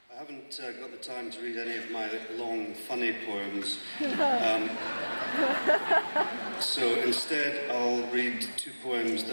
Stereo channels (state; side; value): inverted; both; correlation -1.00